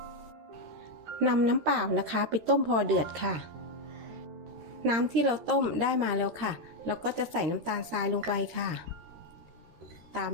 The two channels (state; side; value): late; left; 13 ms